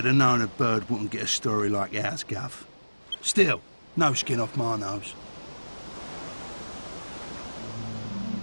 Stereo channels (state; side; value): inverted; both; correlation -1.00